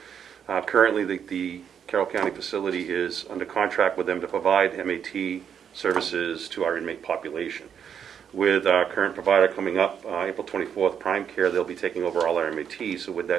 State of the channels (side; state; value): left; quieter; 8.0 dB